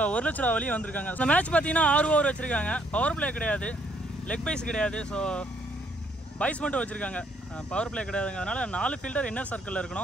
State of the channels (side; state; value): both; normal; correlation 0.68